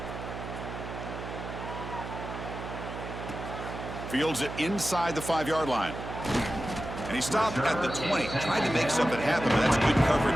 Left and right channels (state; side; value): noise; right; hum, 8 dB below the sound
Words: Fields it inside the 5-yard line. And he stopped at the 20. Tried to make something happen, but that's good